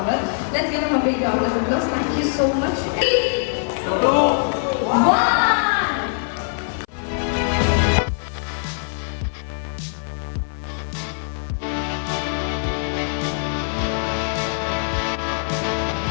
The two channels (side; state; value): right; silent; 59 dB below the other